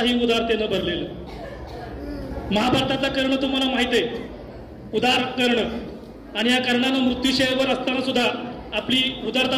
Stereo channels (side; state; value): both; identical; correlation 1.00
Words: उदारतेनं भरलेलं. महाभारतातलं कर्ण तुम्हाला माहित आहे, उदार कर्ण. आणि या कर्णानं मृत्यूशयवर असताना सुद्धा आपली